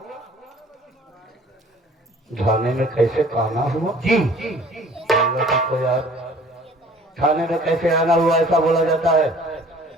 थाने में कैसे काना हुआ? जी। बोलना सीखो यार। थाने में कैसे आना हुआ ऐसा बोला जाता है,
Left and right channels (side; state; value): both; normal; correlation 0.51